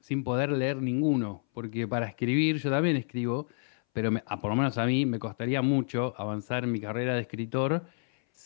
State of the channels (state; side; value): silent; right; 58 dB below the other